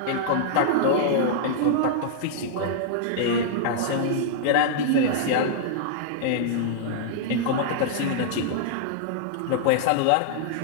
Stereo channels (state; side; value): different; both; correlation -0.02